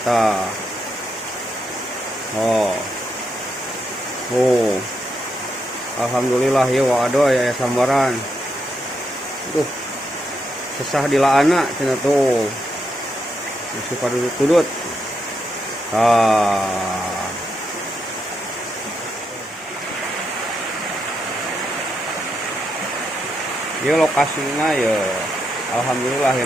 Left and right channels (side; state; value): both; normal; correlation 0.81